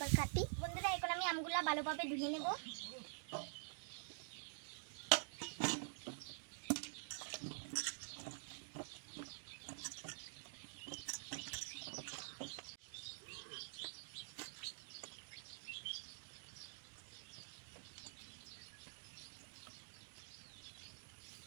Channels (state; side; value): silent; left; digital silence